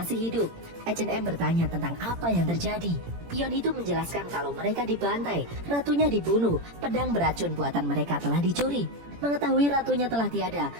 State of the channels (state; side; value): late; left; 17 ms